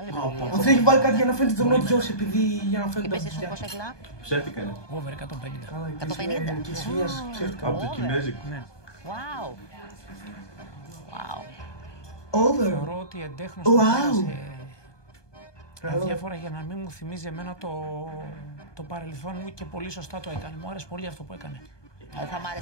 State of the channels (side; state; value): right; late; 1.2 ms